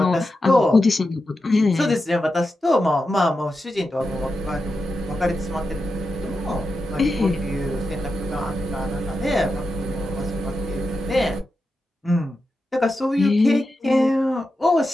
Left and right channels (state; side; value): normal; both; correlation 0.89